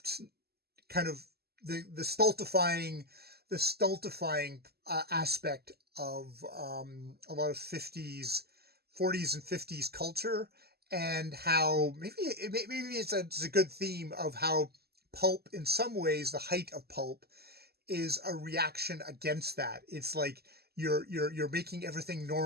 kind of the stultifying aspect of a lot of 40s and 50s culture, and how maybe it's a good theme of how pulp, in some ways, the height of pulp is a reaction against that. It's like you're making everything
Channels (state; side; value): late; left; 0.46 ms